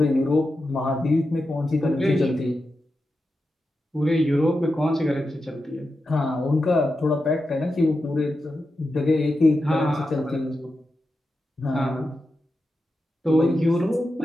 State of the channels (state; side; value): normal; both; correlation 0.89